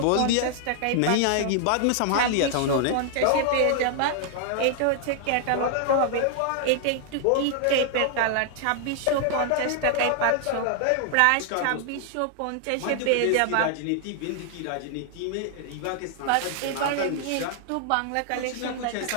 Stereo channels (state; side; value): different; both; correlation 0.00